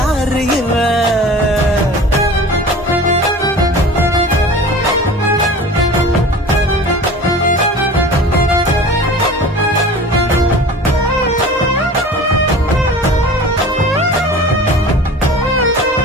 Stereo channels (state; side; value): normal; both; correlation 0.39